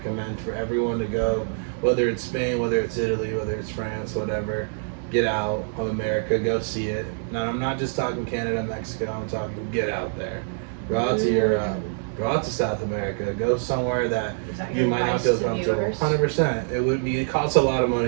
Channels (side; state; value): left; silent; digital silence